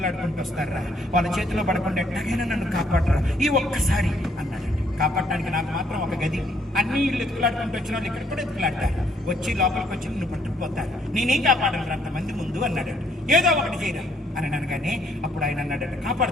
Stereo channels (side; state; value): both; normal; correlation 0.68